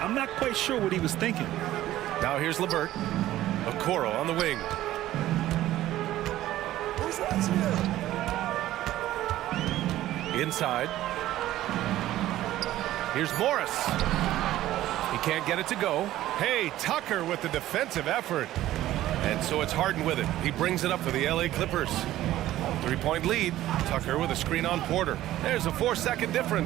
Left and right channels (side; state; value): left; quieter; 14.4 dB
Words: not quite sure what he was thinking. Now here's Levert. Okoro on the wing. Inside. Here's Morris. He can't get it to go. Hey, Tucker with the defensive effort. And so it's Harden with it. He brings it up for the LA Clippers. 3-point lead. Tucker with a screen on Porter. There's a 4-second